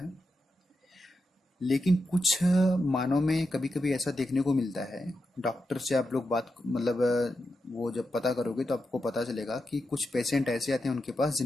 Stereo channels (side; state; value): both; normal; correlation 0.87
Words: लेकिन कुछ मानव में कभी कभी ऐसा देखने को मिलता है। डॉक्टर से आप लोग बात मतलब वो जब पता करोगे तो आपको पता चलेगा कि कुछ पेशेंट ऐसे आते हैं उनके पास